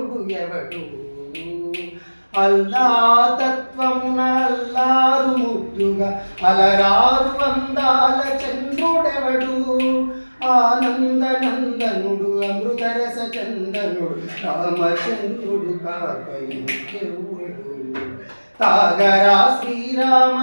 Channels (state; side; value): inverted; both; correlation -1.00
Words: ఎవడు అల్లా తత్వమున అల్లారు ముద్దుగా అలరారు అందాల చంద్రుడెవడు ఆనందనందనుడు అమృతరస చందనుడు రామచంద్రుడు కాకయుడు తాగరా శ్రీరామ